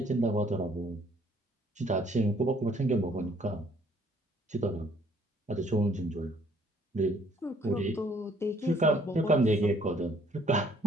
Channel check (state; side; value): normal; both; correlation 0.62